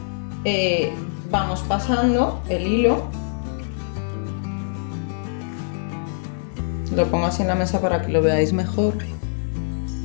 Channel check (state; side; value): silent; right; 60 dB below the other